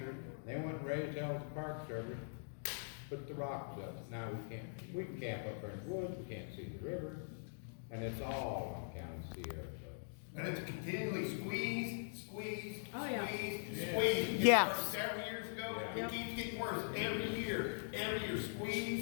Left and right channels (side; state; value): right; silent; digital silence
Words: they went and raised hell with the Park Service, put the rocks up. Now we can camp up there in the woods, we can't see the river, and it's all on account of Sierra Club. And it's continually squeeze. Oh, yeah. Squeeze. Yes. It started several years ago, Yeah. it keeps getting worse every year,